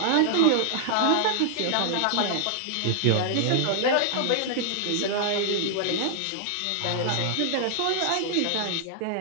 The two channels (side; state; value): both; different; correlation 0.00